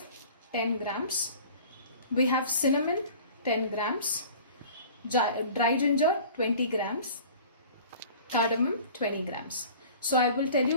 10 grams. We have cinnamon 10 grams. Dry ginger 20 grams. Cardamom 20 grams. So I will tell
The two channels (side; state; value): both; inverted; correlation -0.44